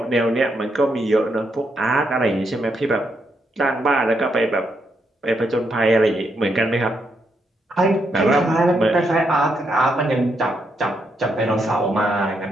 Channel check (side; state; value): both; normal; correlation 0.79